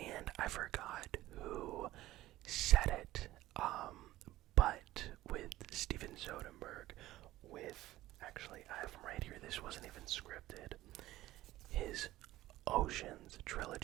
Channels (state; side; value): quieter; left; 16.0 dB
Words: I forgot who said it, but with Steven Soderbergh, actually I have him right here, this wasn't even scripted, his Oceans